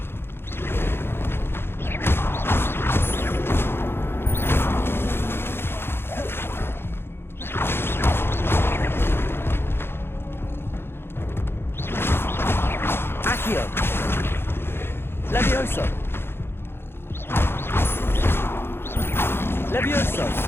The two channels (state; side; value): late; right; 0.11 ms